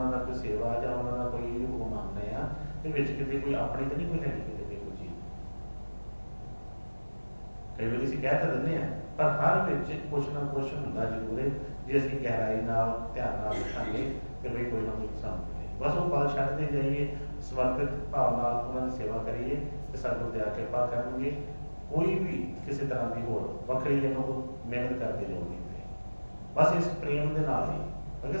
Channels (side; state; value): both; inverted; correlation -1.00